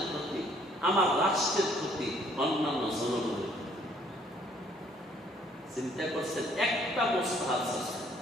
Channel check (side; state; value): both; normal; correlation 0.62